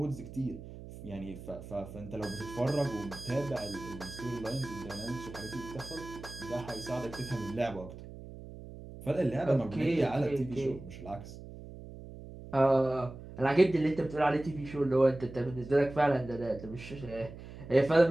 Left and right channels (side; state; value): right; noise; hum, 14 dB below the sound